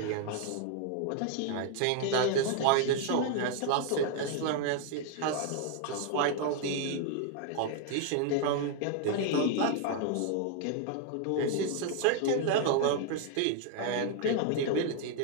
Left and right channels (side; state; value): both; different; correlation 0.00